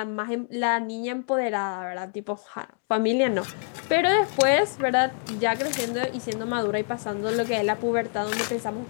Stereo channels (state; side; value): silent; right; 61 dB below the other